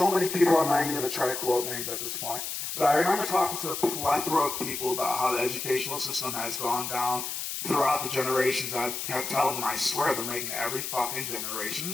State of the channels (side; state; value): left; noise; hiss, 5 dB below the sound